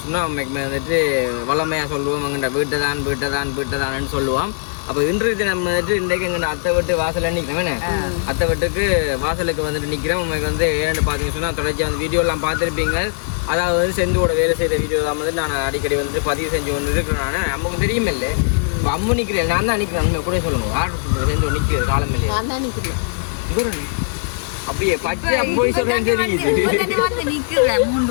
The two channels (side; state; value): right; silent; digital silence